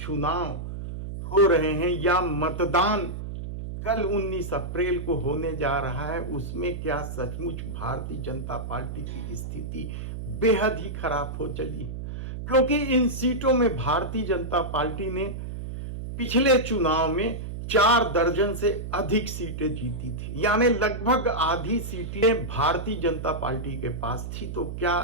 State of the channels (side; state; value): right; noise; hum, 7 dB below the sound